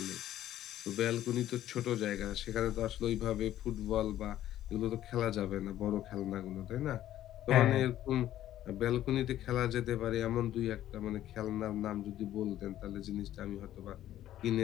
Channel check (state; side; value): quieter; right; 12.7 dB